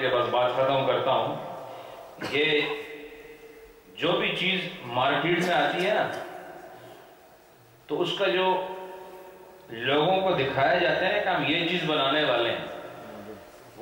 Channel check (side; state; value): both; identical; correlation 1.00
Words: کے بس بات ختم کرتا ہوں. یہ جو بھی چیز مارکیٹ میں آتی ہے نا، تو اس کا جو لوگوں کو دکھایا جاتا ہے کہ ہم یہ چیز بنانے والے ہیں،